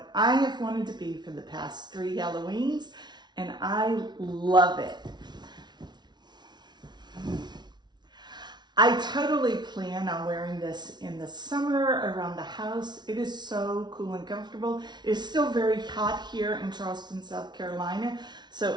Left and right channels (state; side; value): late; left; 0.20 ms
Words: I have wanted to be for the past 3 Halloweens, and I love it. I totally plan on wearing this in the summer around the house. It is so cool and comfortable. It is still very hot here in Charleston, South Carolina.